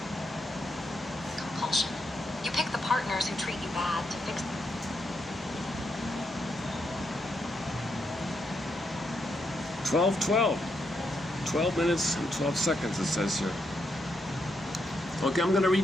Compulsion. You pick the partners who treat you bad to fix. 12 minutes and 12 seconds, it says here. Okay, I'm going to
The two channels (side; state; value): both; normal; correlation 0.80